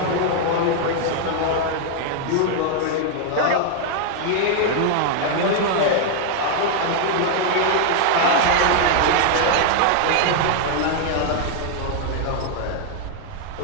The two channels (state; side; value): different; both; correlation 0.00